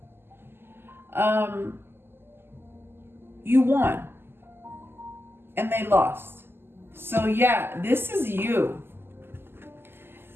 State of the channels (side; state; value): left; late; 0.11 ms